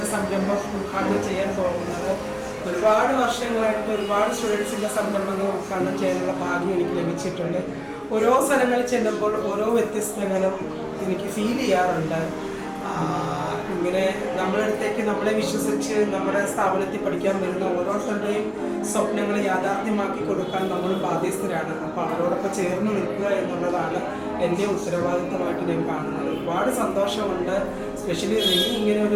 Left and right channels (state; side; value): identical; both; correlation 1.00